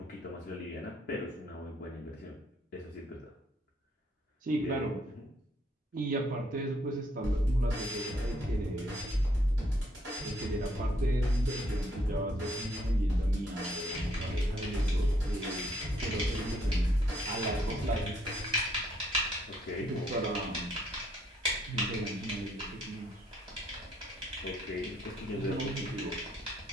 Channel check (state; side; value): normal; both; correlation 0.70